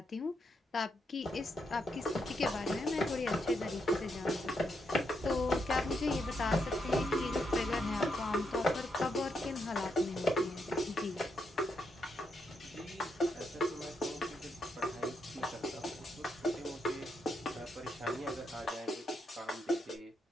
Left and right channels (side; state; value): both; normal; correlation 0.80